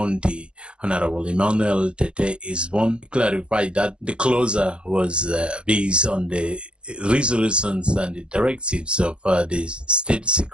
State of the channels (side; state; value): left; late; 0.056 ms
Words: Honorable Emmanuel Tete Isbon, clarified that the closure was based on the resolutions and the directives of the State